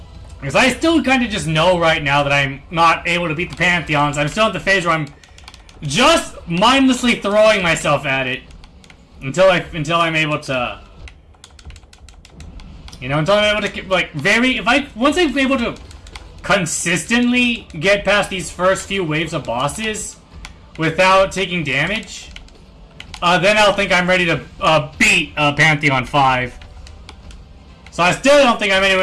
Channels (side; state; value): both; identical; correlation 1.00